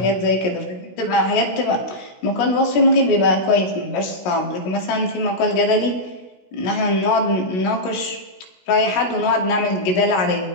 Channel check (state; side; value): late; right; 16 ms